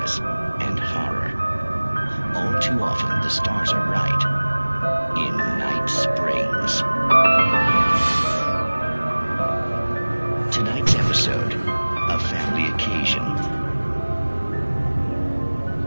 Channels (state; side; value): inverted; both; correlation -1.00